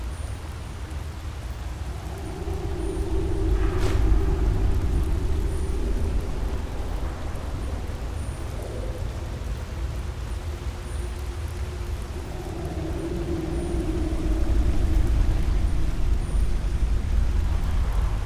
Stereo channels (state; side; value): identical; both; correlation 1.00